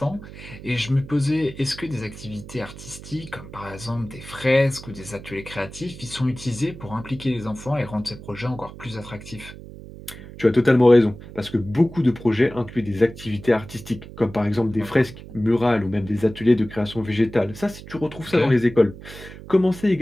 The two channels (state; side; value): noise; right; hum, 15 dB below the sound